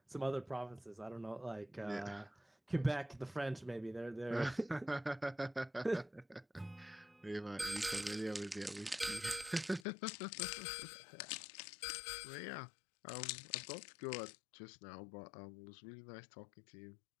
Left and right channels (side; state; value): right; drops out; at 9.9 s